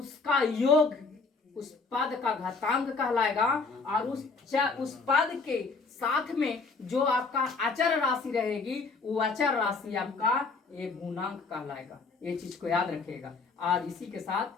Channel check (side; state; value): right; quieter; 4.3 dB